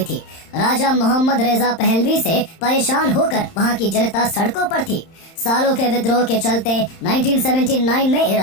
थी। राजा मोहम्मद रेजा पहलवी से परेशान होकर वहां की जनता सड़कों पर थी। सालों के विद्रोह के चलते 1979 में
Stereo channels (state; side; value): late; right; 31 ms